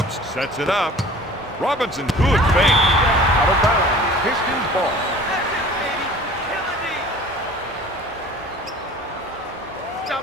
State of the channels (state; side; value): normal; both; correlation 0.45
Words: sets it up. Robinson, good fake. Out of bounds, Pistons ball.